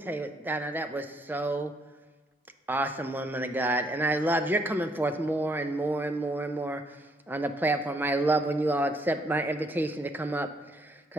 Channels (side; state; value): both; normal; correlation 0.70